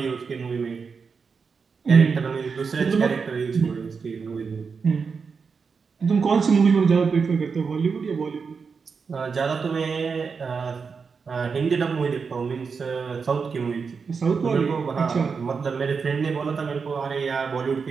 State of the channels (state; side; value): quieter; left; 5.4 dB